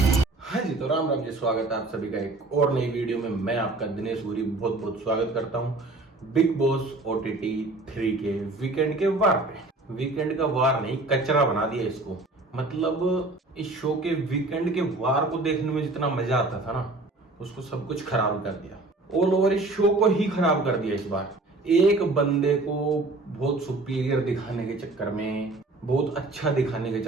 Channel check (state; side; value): quieter; left; 3.0 dB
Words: हाँ जी, तो राम राम जी, स्वागत है आप सभी का एक और नई वीडियो में। मैं आपका दिनेश गुरी बहुत बहुत स्वागत करता हूँ बिग बॉस OTT 3 के वीकेंड के वार पे। वीकेंड का वार नहीं, कचरा बना दिया इसको। मतलब इस शो के वीकेंड के वार को देखने में जितना मजा आता था ना, उसको सब कुछ खराब कर दिया। ऑल ओवर इस शो को ही खराब कर दिया इस बार। एक बंदे को बहुत सुपीरियर दिखाने के चक्कर में, बहुत अच्छा दिखाने के